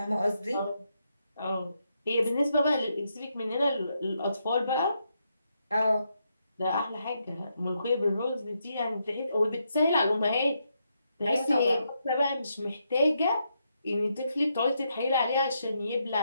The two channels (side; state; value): both; inverted; correlation -0.80